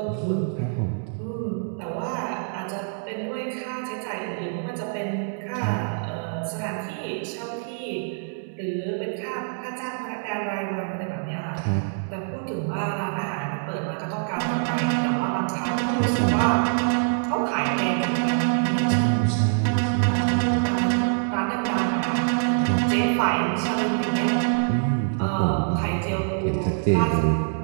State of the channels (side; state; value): left; silent; 62 dB below the other